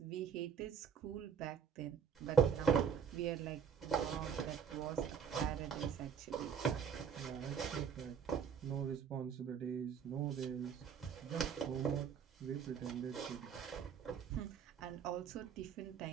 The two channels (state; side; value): quieter; left; 7.1 dB